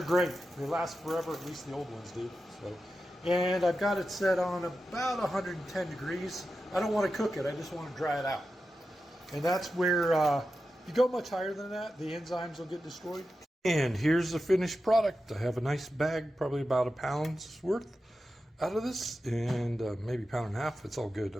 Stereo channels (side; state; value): both; normal; correlation 0.91